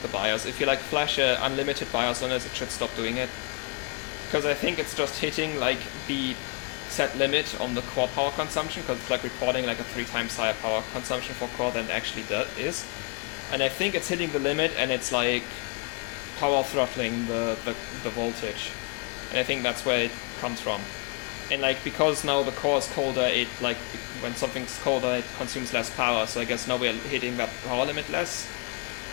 the BIOS. If you like flash a unlimited BIOS on this, it should stop doing it. Because I think it's just hitting like the set limit on the core power consumption, because it's like reporting like a 3 times higher power consumption for core than it actually is. And I think it's hitting the limit and it's like power throttling the voltage. And I think that's where it comes from. And like, because now the core is colder, it like, when something's colder it consumes less power, so I guess now we're hitting that power limit less.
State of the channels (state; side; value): quieter; right; 31.5 dB